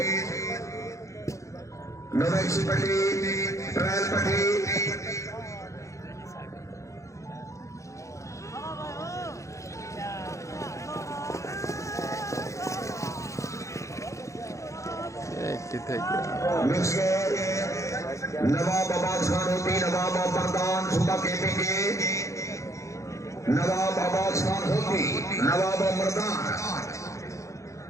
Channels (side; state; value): right; late; 0.15 ms